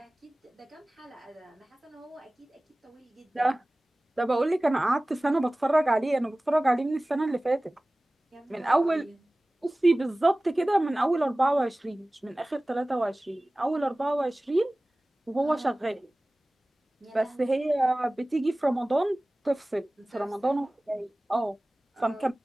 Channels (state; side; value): normal; both; correlation 0.98